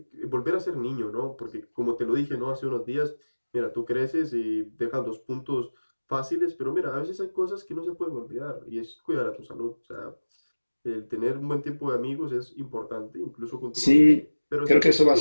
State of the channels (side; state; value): both; inverted; correlation -1.00